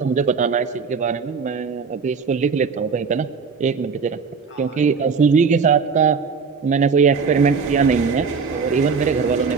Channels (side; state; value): left; quieter; 5.4 dB